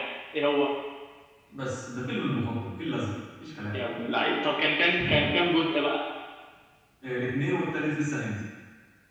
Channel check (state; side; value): identical; both; correlation 1.00